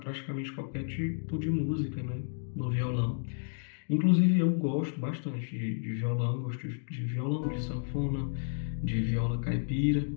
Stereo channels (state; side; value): silent; right; digital silence